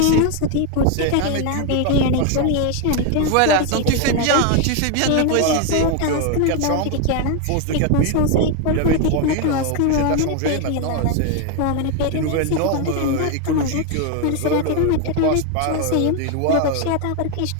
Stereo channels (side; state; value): both; different; correlation 0.01